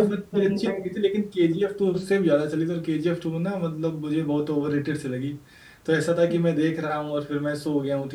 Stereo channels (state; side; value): identical; both; correlation 1.00